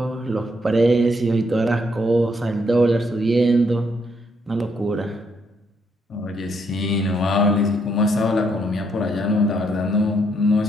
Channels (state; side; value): normal; both; correlation 0.74